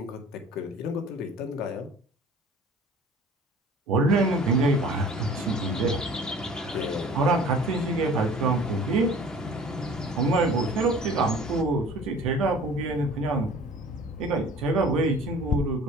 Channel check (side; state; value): both; normal; correlation 0.47